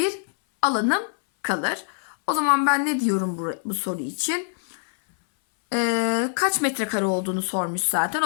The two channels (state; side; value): silent; right; 59 dB below the other